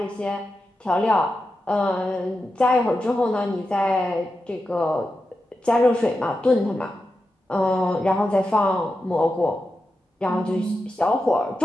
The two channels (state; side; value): normal; both; correlation 0.90